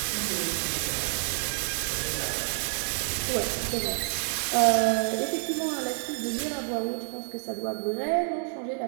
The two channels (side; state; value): left; silent; digital silence